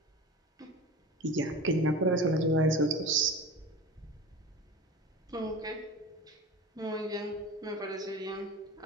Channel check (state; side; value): normal; both; correlation 0.34